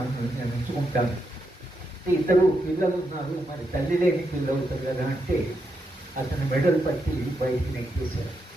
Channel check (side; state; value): both; normal; correlation 0.83